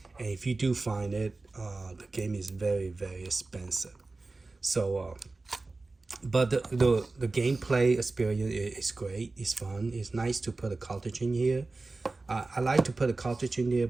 and if you do find it, the game is very expensive. So but the gameplay experience is great. It's fun. It's nice to put a cartridge in here. I like to put a cartridge in there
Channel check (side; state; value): left; quieter; 3.5 dB